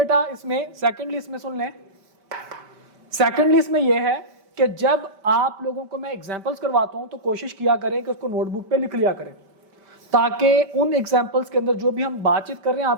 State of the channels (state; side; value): late; left; 5.1 ms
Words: इसमें सुन लें, सेकेंडली इसमें यह है कि जब आप लोगों को मैं एग्जांपल्स करवाता हूं तो कोशिश किया करें कि उसको नोटबुक पे लिख लिया करें ताकि उन एग्जांपल्स के अंदर जो भी हम बातचीत कर रहे हैं